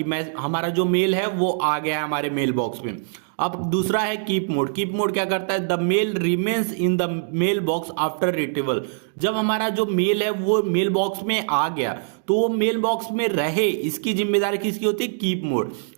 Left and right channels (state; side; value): silent; left; digital silence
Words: मैं हमारा जो मेल है वो आ गया है हमारे मेल बॉक्स में। अब दूसरा है कीप मोड। कीप मोड क्या करता है? The mail remains in the mail box after retrieval. जब हमारा जो मेल है वो मेल बॉक्स में आ गया तो वो मेल बॉक्स में रहे, इसकी जिम्मेदारी किसकी होती है? Keep mode.